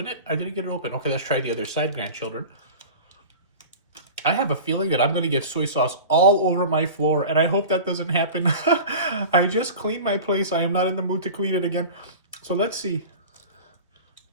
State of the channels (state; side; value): inverted; both; correlation -0.35